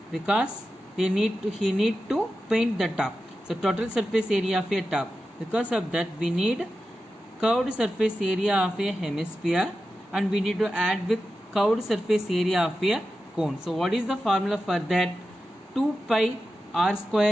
because he need to paint the top. So total surface area of a top. Because of that we need curved surface area of a hemisphere and we need to add with curved surface area of a cone. So what is the formula for that? 2 pi r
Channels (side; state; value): both; normal; correlation 0.91